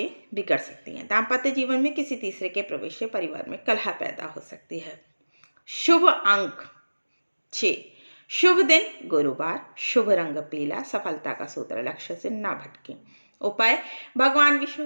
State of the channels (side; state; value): both; inverted; correlation -1.00